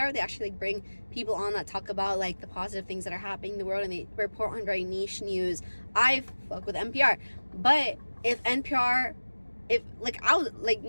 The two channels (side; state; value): both; inverted; correlation -1.00